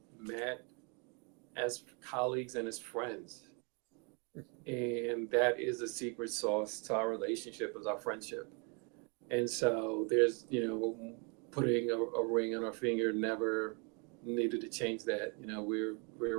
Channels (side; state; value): left; quieter; 34.9 dB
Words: met as colleagues and as friends, and that is the secret sauce to our relationship, is our friendship. And so there's, putting a ring on our finger never needed to change that. We're